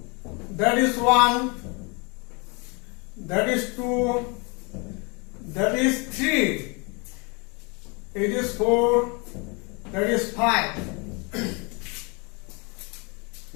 that is 1, that is 2, that is 3, it is 4, that is 5.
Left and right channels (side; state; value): right; quieter; 30.6 dB